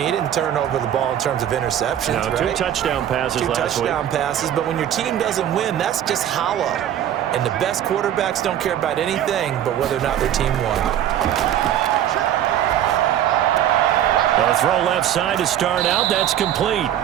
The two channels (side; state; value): left; quieter; 10.8 dB